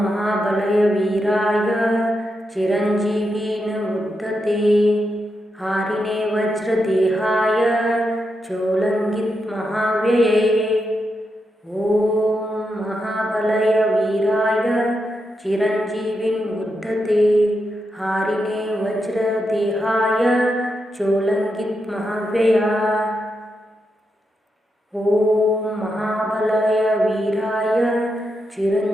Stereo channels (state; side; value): normal; both; correlation 0.85